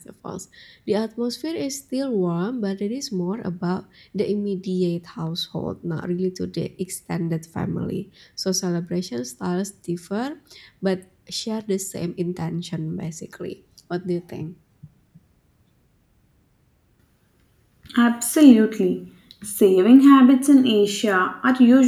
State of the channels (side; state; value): both; identical; correlation 1.00